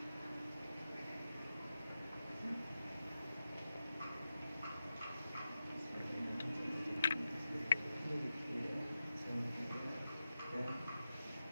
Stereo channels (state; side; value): inverted; both; correlation -0.91